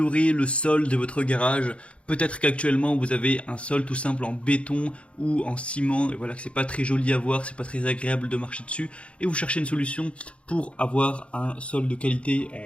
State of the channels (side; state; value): right; late; 0.060 ms